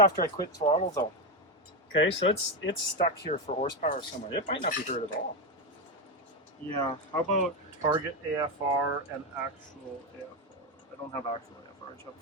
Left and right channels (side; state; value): both; normal; correlation 0.10